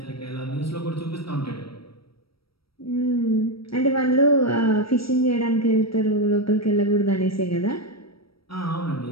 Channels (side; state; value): right; late; 0.75 ms